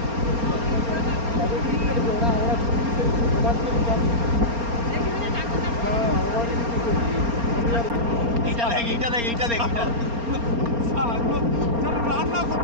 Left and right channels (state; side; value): late; left; 4.3 ms